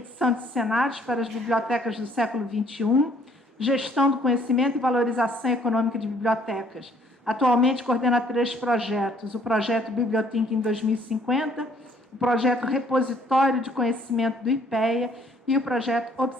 de cenários para as bibliotecas do século XXI, gestão do conhecimento e valorização econômica de bibliotecas. Atualmente coordena 3 projetos: o projeto Bibliothink em 2050, o projeto Repositório de Conhecimento do IPEA e o projeto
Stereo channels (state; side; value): normal; both; correlation 0.61